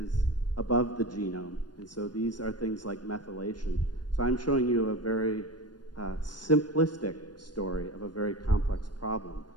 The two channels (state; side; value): late; right; 0.70 ms